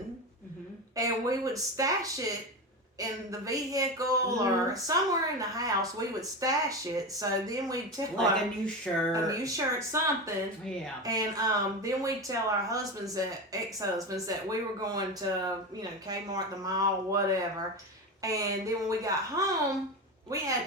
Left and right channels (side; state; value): both; normal; correlation 0.21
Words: and we would stash it in the vehicle or somewhere in the house. We would stash it, so then we'd tell Like a new shirt. something. Yeah. And then we'd tell our ex-husbands that we were going to, Kmart, the mall, whatever. And then when we got home, we